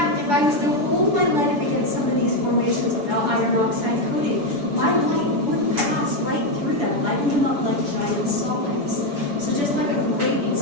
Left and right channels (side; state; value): left; late; 7.0 ms